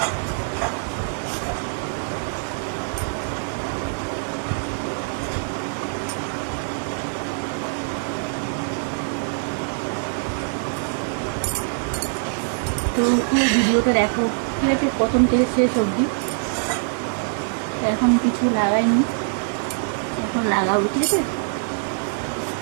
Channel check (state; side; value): silent; left; digital silence